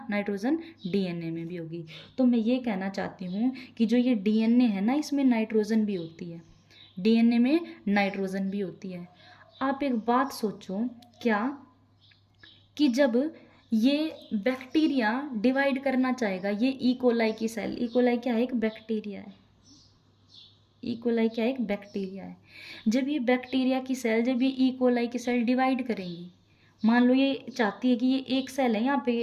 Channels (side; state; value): both; identical; correlation 1.00